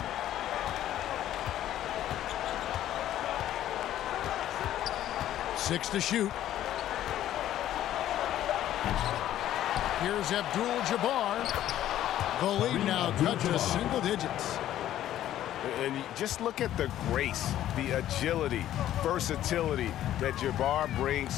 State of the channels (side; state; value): right; quieter; 12.4 dB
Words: Six to shoot. Here's Abdul-Jabbar. The lead now cut to single digits. And just look at the grace, the agility, versatility that Jabbar